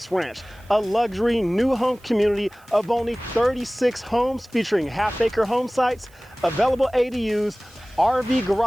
Ranch, a luxury new home community of only 36 homes featuring half-acre home sites, available ADUs, RV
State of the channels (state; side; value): noise; right; hiss, 29 dB below the sound